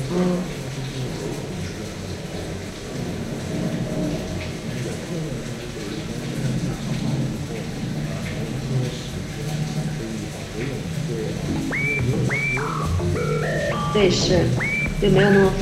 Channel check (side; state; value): both; identical; correlation 1.00